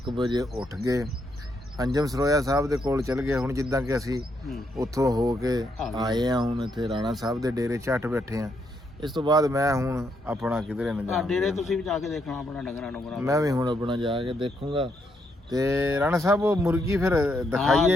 ਵਜੇ ਉੱਠ ਗਏ ਅੰਜਮ ਸਰੋਇਆ ਸਾਹਿਬ ਦੇ ਕੋਲ ਚਲ ਗਏ। ਹੁਣ ਜਿੱਦਾਂ ਕਿ ਅਸੀਂ ਉੱਥੋਂ ਹੋ ਕੇ ਆਏ ਆ ਹੁਣ ਇੱਥੇ ਰਾਣਾ ਸਾਹਿਬ ਦੇ ਡੇਰੇ ਝੱਟ ਬੈਠੇ ਆ। ਇਸ ਤੋਂ ਬਾਅਦ ਮੈਂ ਹੁਣ ਆਪਣਾ ਕਿਧਰੇ ਨਾ ਜਾ ਡੇਰੇ ਤੁਸੀਂ ਵੀ ਜਾ ਕੇ ਦੇਖਣਾ ਆਪਣਾ ਡੰਗਰਾਂ ਨੂੰ ਮੈਂ ਵੀ ਹੁਣ ਆਪਣਾ ਜਾ ਕੇ ਦੇਖੂੰਗਾ। ਤੇ ਰਾਣਾ ਸਾਹਿਬ ਉਹ ਮੁਰਗੀ ਫਿਰ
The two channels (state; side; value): normal; both; correlation 0.77